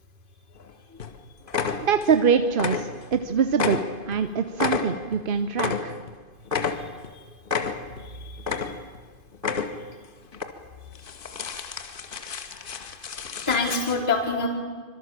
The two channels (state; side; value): late; left; 2.5 ms